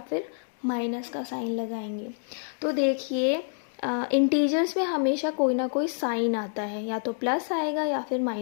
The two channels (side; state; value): right; silent; 60 dB below the other